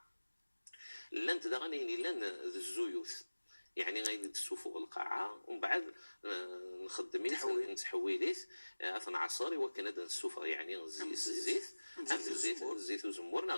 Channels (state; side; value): inverted; both; correlation -1.00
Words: لان تدغني لان الزيوث يعني غير السفر القاعة ومن بعد نخدميت نتحويليت اثنا عصاري وكان هذا السفر يعني الزيت وزمور